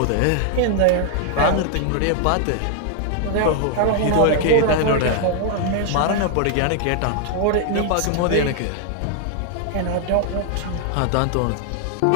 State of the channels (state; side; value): different; both; correlation 0.00